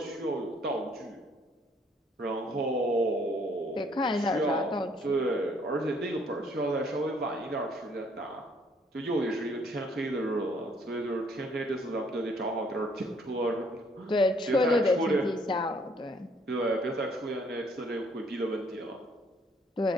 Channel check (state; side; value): normal; both; correlation 0.64